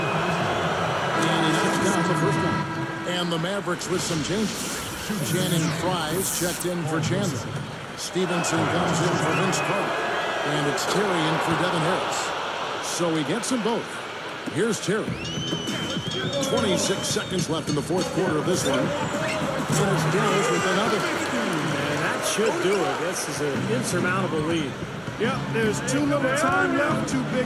the first one. And the Mavericks with some changes. Channing Fries checked in for Chandler. Stevenson comes in for Vince Carter. And it's Terry in for Devin Harris. So he gets them both. Here's Terry. 26 seconds left in the fourth quarter of this one. And it's Dallas with another. And that should do it. This is an insurmountable lead. Yep, there's too little time left, too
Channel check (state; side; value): identical; both; correlation 1.00